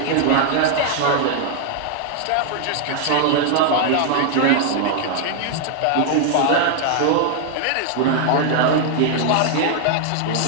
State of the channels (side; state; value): both; different; correlation 0.00